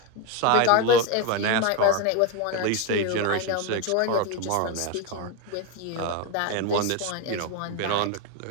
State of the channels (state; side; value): different; both; correlation 0.03